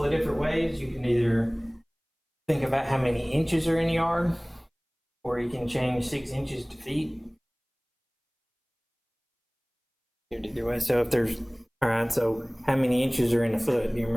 of different ways. You can either think about how many inches are in a yard, or you can change 6 inches to feet. Either way. So if there's, all right, so how many inches are in a foot? Do you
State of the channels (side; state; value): both; identical; correlation 1.00